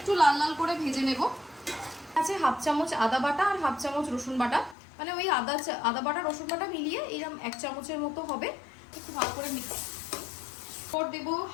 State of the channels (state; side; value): drops out; right; at 4.8 s